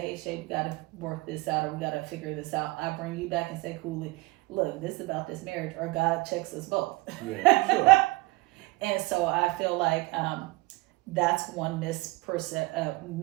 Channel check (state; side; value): quieter; left; 22.7 dB